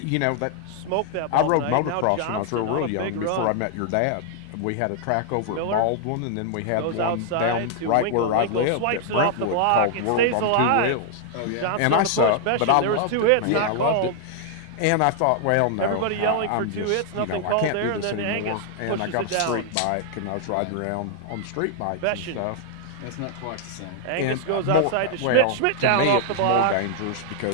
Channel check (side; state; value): both; different; correlation -0.01